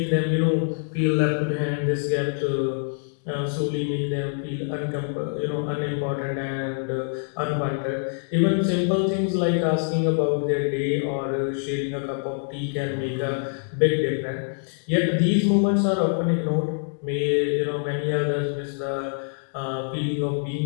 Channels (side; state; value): right; silent; digital silence